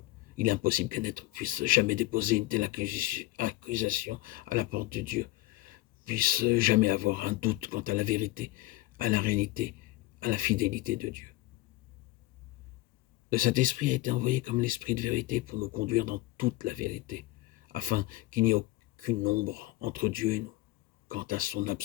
Il est impossible qu'un être puisse jamais déposer une telle accusation à la porte de Dieu, puisse jamais avoir un doute quant à la vérité, à la réalité, à la fidélité de Dieu. Le Saint-Esprit a été envoyé comme l'Esprit de vérité pour nous conduire dans toute la vérité, afin qu'il n'y ait aucune ombre entre Dieu et nous, quant à son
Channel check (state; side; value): quieter; right; 18.7 dB